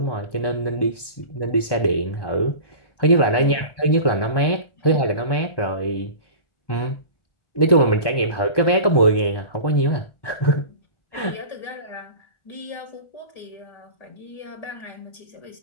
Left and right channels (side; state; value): right; late; 1.2 ms